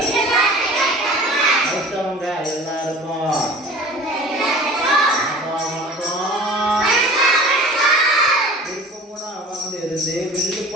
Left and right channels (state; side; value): normal; both; correlation 0.42